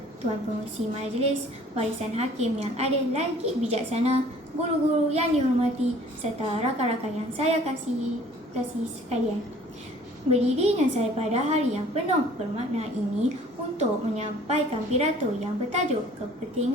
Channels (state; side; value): normal; both; correlation 0.53